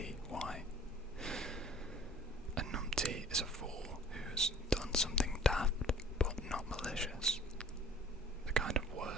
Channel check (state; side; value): normal; both; correlation 0.48